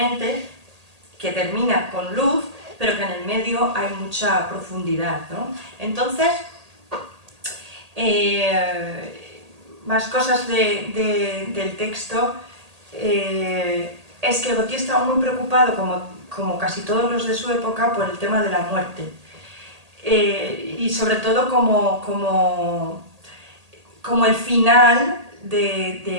que termina con luz, pero que en el medio hay mucha profundidad, ¿no? Entonces, más cosas del texto, es que Gautier estaba muy preocupado, como casi todos los de su época, por el tema de la muerte. Y sobre todo como el final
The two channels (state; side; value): late; left; 1.8 ms